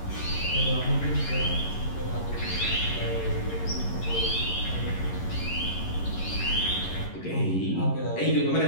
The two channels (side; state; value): right; late; 11 ms